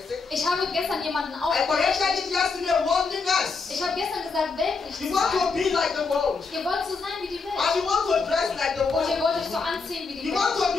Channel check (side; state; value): right; quieter; 4.5 dB